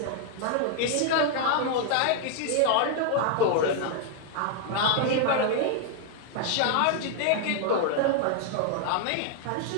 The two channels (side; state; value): both; different; correlation 0.00